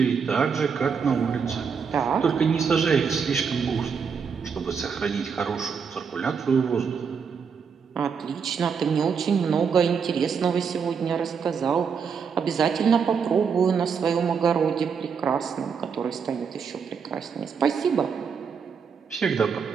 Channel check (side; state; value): left; quieter; 6.3 dB